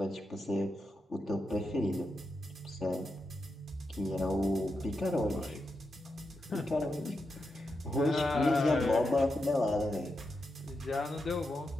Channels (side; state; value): both; normal; correlation 0.86